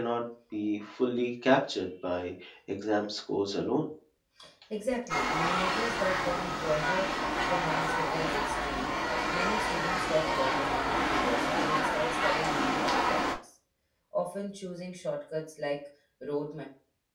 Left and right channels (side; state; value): both; identical; correlation 1.00